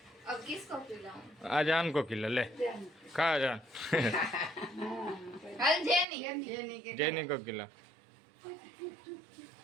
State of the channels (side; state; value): left; drops out; at 6.1 s